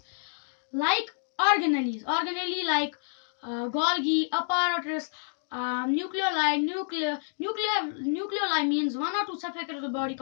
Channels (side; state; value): right; silent; digital silence